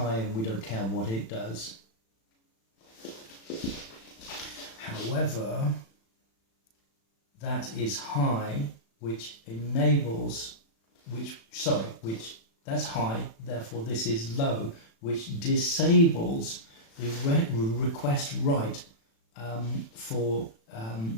and we don't care what it does. However, that is high, which that's high, therefore this is low, which disables the request write for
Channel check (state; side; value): late; right; 36 ms